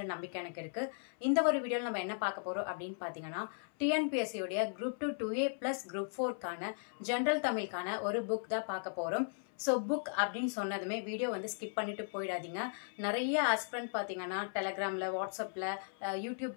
நம்பிக்கை எனக்கு இருக்கு. இந்த ஒரு வீடியோவில் நம்ம என்ன பார்க்க போறோம் அப்படின்னு பார்த்தீங்கன்னா, டிஎன்பிஎஸ்சியோடைய குரூப் 2 2A ப்ளஸ் குரூப் 4க்கான ஜென்ரல் தமிழுக்கான ஒரு புக் தான் பார்க்க போறோம். ஸோ புக் அப்படின்னு சொன்னதுமே வீடியோ ஸ்கிப் பண்ணிட்டு போயிடாதீங்க. நிறைய ஆஸ்பிரண்ட் பார்த்தீங்கன்னா டெலகிராமில், வாட்ஸ்அப்பில், யூடியூப்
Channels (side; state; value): right; silent; 53 dB below the other